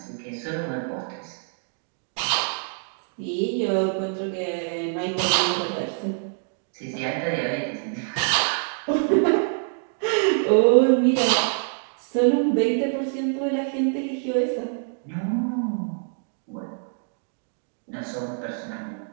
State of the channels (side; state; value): left; silent; 57 dB below the other